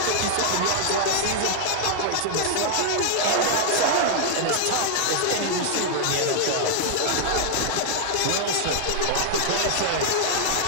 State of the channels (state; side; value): different; both; correlation 0.00